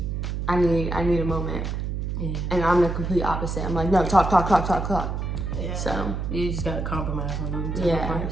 I need a moment. Yeah. And I'm the complete opposite. I'm like, no, talk. Yeah. So you just gotta compromise on them type of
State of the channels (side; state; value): right; noise; hum, 3 dB below the sound